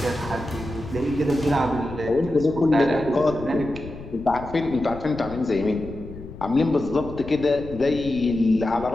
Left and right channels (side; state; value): left; noise; rumble, 13 dB below the sound